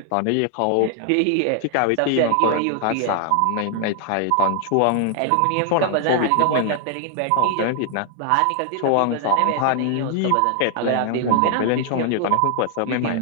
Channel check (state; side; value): different; both; correlation 0.00